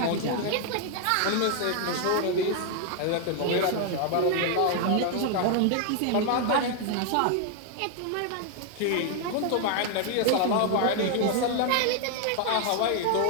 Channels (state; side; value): different; both; correlation 0.00